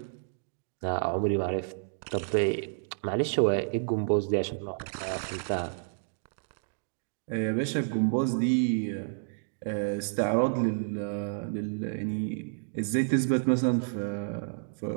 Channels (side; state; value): left; silent; digital silence